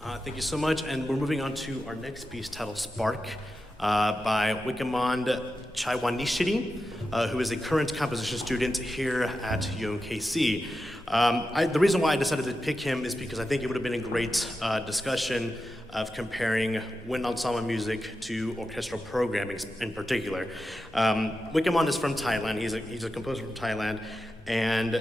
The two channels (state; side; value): normal; both; correlation 0.90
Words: Thank you so much, and we're moving on to our next piece titled Spark by Chaiwanichsiri, who is a current composition student here at UMKC. The reason why I decided to pick him is because I think it would have been a great discussion of comparing wind ensemble music to orchestral programming in particular. Wikamon is from Thailand. He's a composer from Thailand,